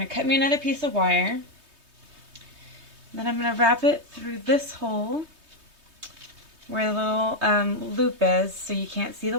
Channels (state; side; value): late; left; 3.2 ms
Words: to cut me another piece of wire. Then I'm going to wrap it through this hole where the little loop is so you can't see